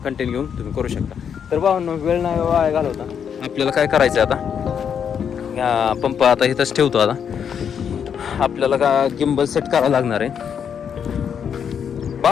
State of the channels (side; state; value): right; quieter; 7.7 dB